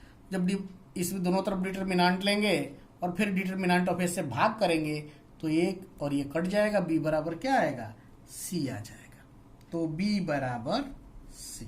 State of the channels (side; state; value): both; identical; correlation 1.00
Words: जब इस दोनों तरफ डिटर्मिनांट लेंगे और फिर डिटर्मिनांट ऑफ ए से भाग करेंगे तो एक और ये कट जाएगा, बी बराबर क्या आएगा, सी आ जाएगा। तो बी बराबर सी।